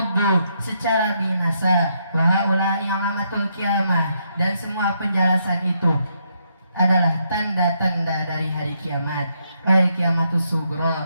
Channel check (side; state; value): both; inverted; correlation -0.77